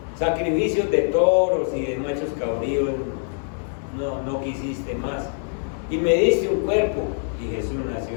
sacrificios de toros y de machos cabríos no quisiste más, y me diste un cuerpo, y Jesús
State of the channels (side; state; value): right; silent; digital silence